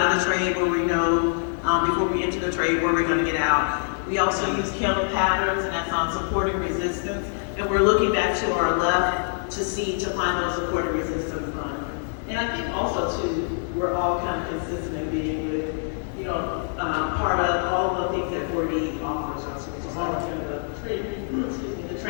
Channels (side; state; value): right; silent; 61 dB below the other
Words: of the trade where we know before we enter the trade where we're going to get out. We also use candle patterns, and that's on support and resistance, and we're looking back to our left to find those support and resistance. And I think also too, we're all kind of consistent in being with, part of all the things that 4D offers us, which is like the